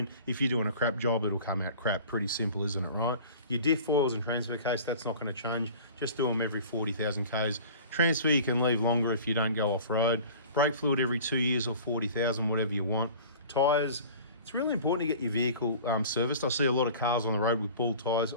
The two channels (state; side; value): inverted; both; correlation -0.42